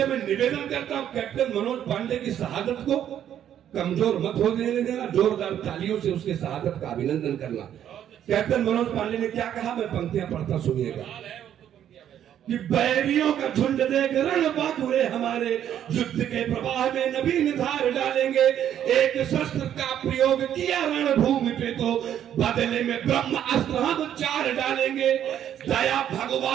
मैं निवेदन करता हूं, कैप्टन मनोज पांडे की शहादत को कमजोर मत हो देना, जोरदार तालियों से उसके शहादत का अभिनंदन करना। कैप्टन मनोज पांडे ने क्या कहा, मैं पंक्तियां पढ़ता, सुनिएगा। कि बैरियों का झुंड देख रण बाकुरे हमारे, युद्ध के प्रवाह में नवीन धार डालेंगे। एक शस्त्र का प्रयोग किया रणभूमि पे, तो बदले में ब्रह्म अस्त्र हम 4 डालेंगे। दया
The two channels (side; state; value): left; quieter; 10.3 dB